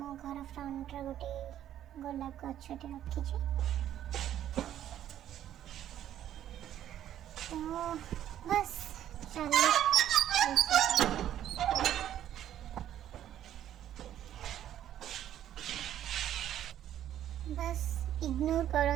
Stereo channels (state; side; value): quieter; left; 11.3 dB